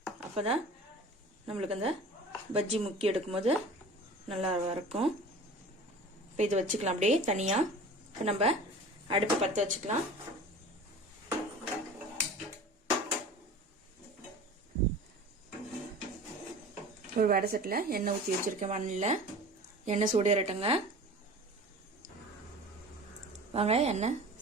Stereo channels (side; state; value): both; normal; correlation 0.39